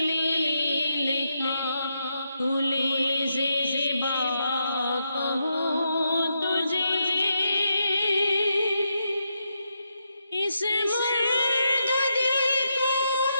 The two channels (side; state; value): both; inverted; correlation -0.82